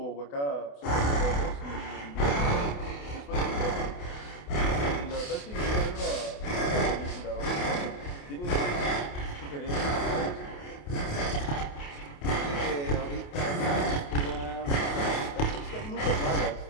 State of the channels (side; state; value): right; late; 28 ms